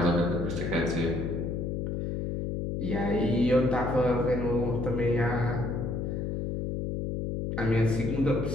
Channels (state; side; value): noise; left; hum, 2 dB below the sound